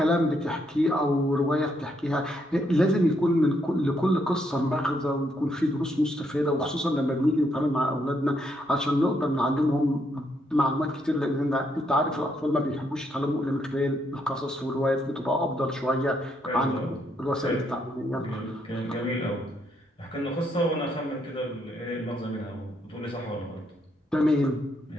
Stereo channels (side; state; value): both; normal; correlation 0.75